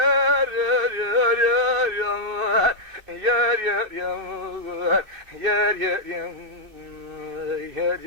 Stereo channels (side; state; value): left; late; 2.6 ms